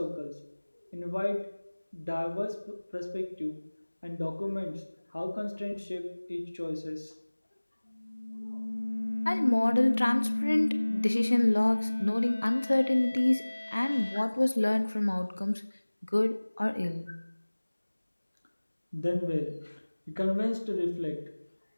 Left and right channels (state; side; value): inverted; both; correlation -1.00